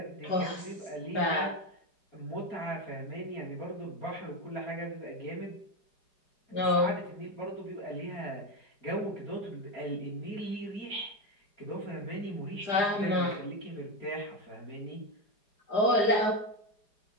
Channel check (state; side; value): late; right; 4.9 ms